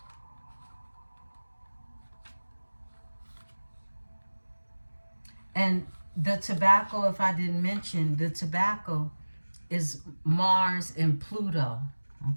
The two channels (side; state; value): both; inverted; correlation -1.00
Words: And the tobacco, if I didn't mention, the tobacco is Mars and Pluto,